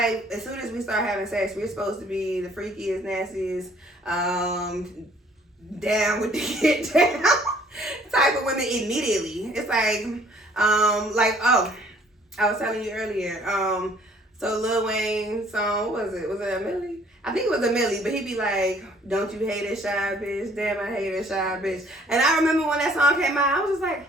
as soon as we start having sex, we're supposed to be the freakiest, nastiest, down with the get down type of women immediately. It's like, oh, I was telling you earlier, so Lil Wayne song, what was it? Was it a Millie? I think it was a Millie, but he'd be like, don't you hate a shy bitch? Damn, I hate a shy bitch. And I remember when that song came out, I was just like,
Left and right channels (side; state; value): both; normal; correlation 0.59